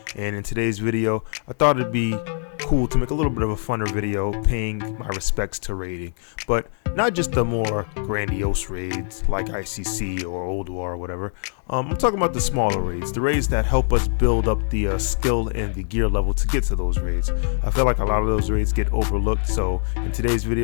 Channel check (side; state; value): right; silent; 63 dB below the other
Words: And in today's video, I thought it'd be cool to make a little bit of a funner video paying my respects to raiding, but not just the more grandiose raids like ICC or Old War or whatever. I'm talking about the smaller raids, the raids that help us build up the skill and the gear level to get to those raids. I feel like a lot of those raids get overlooked, so in today's